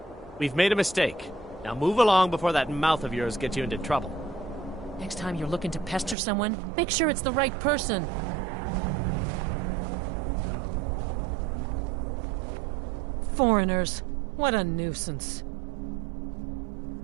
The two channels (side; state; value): left; drops out; at 6.2 s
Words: We've made a mistake. Now move along before that mouth of yours gets you into trouble. Next time you're looking to pester someone, make sure it's the right person. Foreigners. What a nuisance.